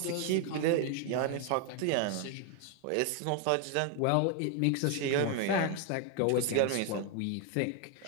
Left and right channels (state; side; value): different; both; correlation 0.01